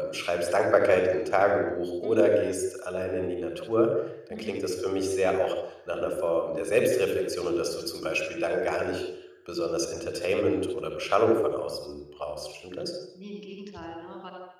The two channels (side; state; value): both; identical; correlation 1.00